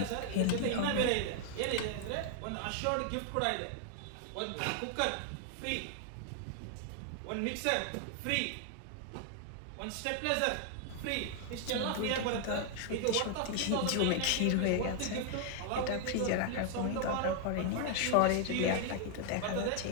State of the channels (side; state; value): both; different; correlation 0.00